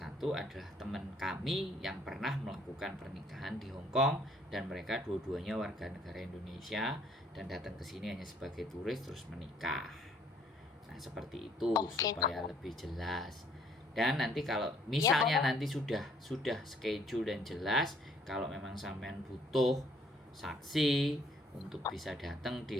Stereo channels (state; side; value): normal; both; correlation 0.63